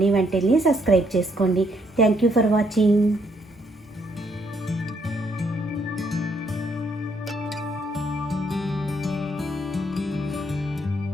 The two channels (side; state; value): both; normal; correlation 0.70